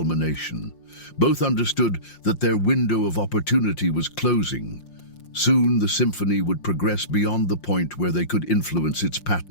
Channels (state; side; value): late; right; 5.7 ms